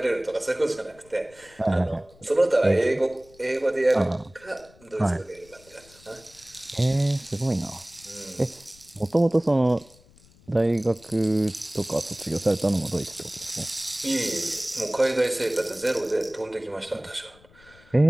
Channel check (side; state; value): left; noise; rumble, 27 dB below the sound